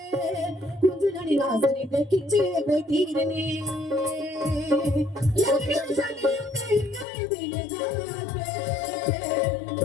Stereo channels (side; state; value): right; drops out; at 7.1 s